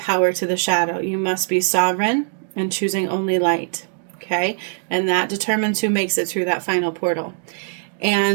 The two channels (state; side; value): silent; left; digital silence